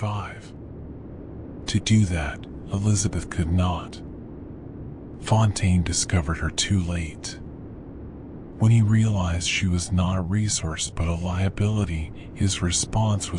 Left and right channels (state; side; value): identical; both; correlation 1.00